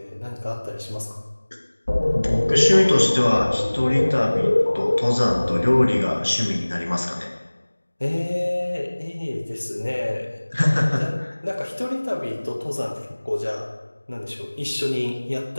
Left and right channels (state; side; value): inverted; both; correlation -1.00